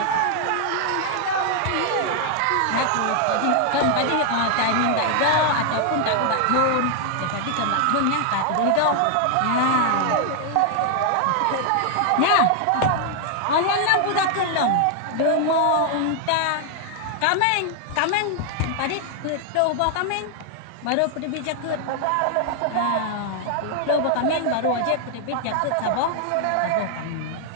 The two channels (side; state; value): both; different; correlation 0.00